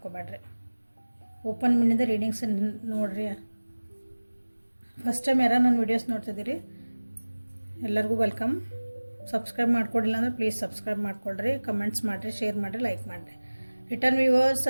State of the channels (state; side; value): inverted; both; correlation -1.00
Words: ಓಪನ್ ಮೈಂಡಿಂದ ರೀಡಿಂಗ್ಸ್ ನೋಡಿರಿ. ಫಸ್ಟ್ ಟೈಮ್ ಯಾರು ನನ್ನ ವೀಡಿಯೋಸ್ ನೋಡ್ತಿದ್ದೀರಿ ಎಲ್ಲರಿಗೂ ವೆಲ್ಕಮ್. ಸಬ್ಸ್ಕ್ರೈಬ್ ಮಾಡ್ಕೊಡಿಲ್ಲ ಅಂದರೆ ಪ್ಲೀಸ್ ಸಬ್ಸ್ಕ್ರೈಬ್ ಮಾಡ್ಕೊಳ್ರಿ, ಕಮೆಂಟ್ಸ್ ಮಾಡಿರಿ, ಶೇರ್ ಮಾಡಿರಿ, ಲೈಕ್ ಮಾಡಿರಿ. Return viewers